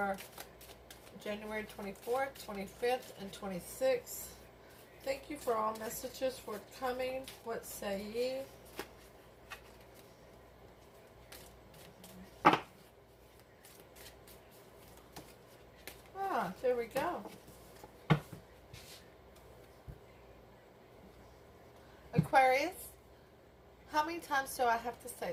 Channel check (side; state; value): both; identical; correlation 1.00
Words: January 24th, 25th, and 26th. Thank you for all messages forthcoming. What say ye? Ah, there we go. Aquarius, how many times do I have to